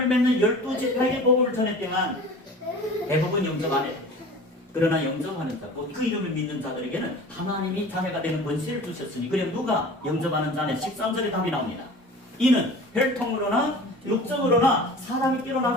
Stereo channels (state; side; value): normal; both; correlation 0.40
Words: 믿는 12지파에게 복음을 전했지만 대부분 영접 안 했다. 그러나 영접하는 자, 그 이름을 믿는 자들에게는 하나님이 자녀가 되는 권세를 주셨으니, 그럼 누가 영접하는 자는 13절에 답이 나옵니다. 이는 혈통으로나 육적으로나 사람이께로